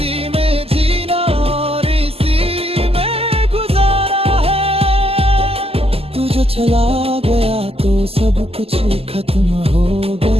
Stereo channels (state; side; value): late; left; 0.29 ms